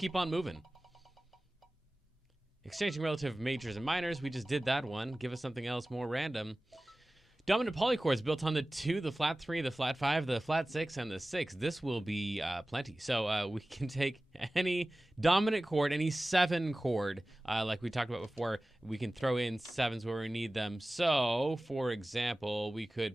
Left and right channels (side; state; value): both; normal; correlation 0.97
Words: on moving. Exchanging relative majors and minors, we just did that one. Give us something else more random. Dominant polychords built on the 2, the flat 3, the flat 5, the flat 6, and the 6. This will be plenty. So we can take any dominant chord, any 7 chord, like we talked about before. We can throw in 7s where we need them. So, for example, we